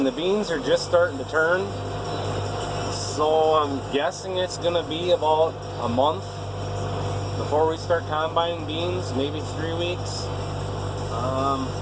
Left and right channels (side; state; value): both; identical; correlation 1.00